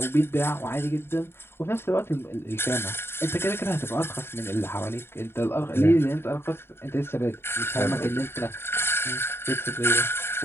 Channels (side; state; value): right; late; 0.11 ms